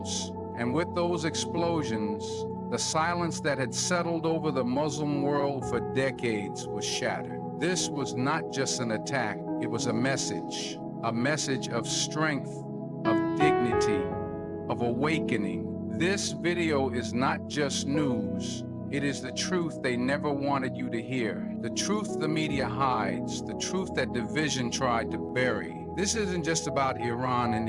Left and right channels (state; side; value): identical; both; correlation 1.00